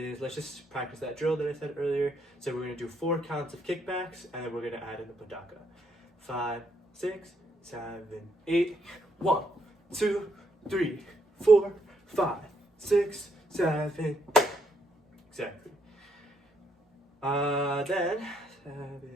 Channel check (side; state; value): both; normal; correlation 0.73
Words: let's just practice that drill that I said earlier. So we're gonna do 4 counts of kickbacks, and then we're gonna add in the Dhamaka. 5, 6, 7, 8. 1, 2, 3, 4, 5, 6, 7, 8. Exactly. Then